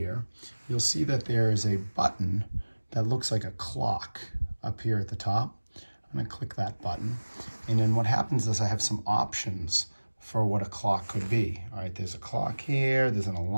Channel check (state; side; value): inverted; both; correlation -1.00